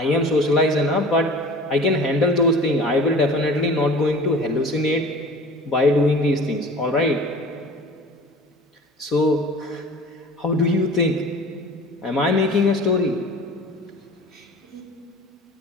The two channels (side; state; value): both; normal; correlation 0.42